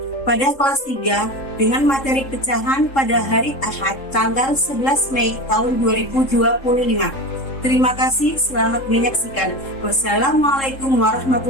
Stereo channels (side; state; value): right; late; 3.7 ms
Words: pada kelas 3 dengan materi pecahan pada hari Ahad tanggal 11 Mei tahun 2025. Terima kasih, selamat menyaksikan. Wassalamualaikum